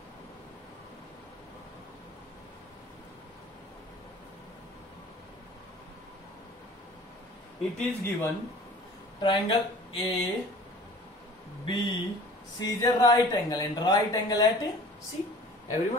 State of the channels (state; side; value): normal; both; correlation 0.46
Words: it is given triangle A, B, C is a right angle, and right angle at C.